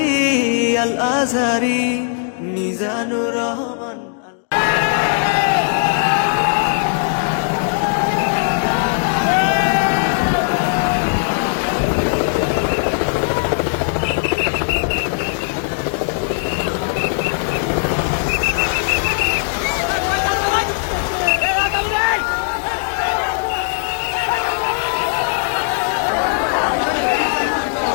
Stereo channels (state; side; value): silent; right; digital silence